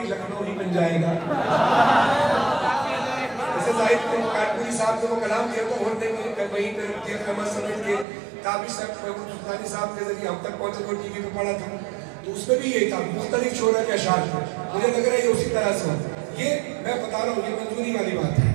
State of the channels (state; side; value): drops out; left; at 8.1 s